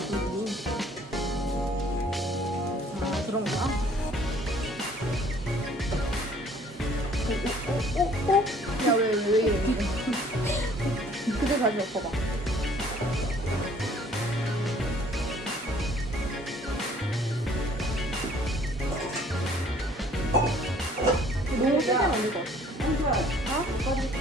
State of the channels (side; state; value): both; normal; correlation 0.57